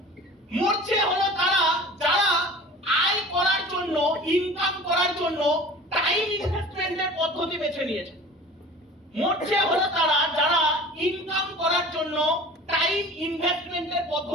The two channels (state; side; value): normal; both; correlation 0.42